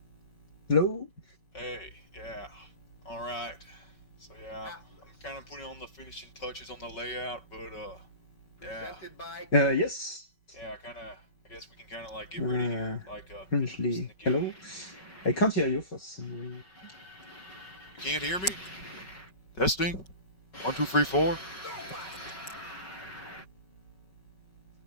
Hello? Hey, yeah. Alright. So yeah, I'm kind of putting on the finishing touches on the layout, but yeah. Presented by Yes. Yeah, I guess we can kind of like get ready here, like introducing Currently, the game. hello? I can't hear you for some reason. You can't hear me? Testing. 1, 2, 3, 4.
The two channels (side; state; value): right; late; 5.3 ms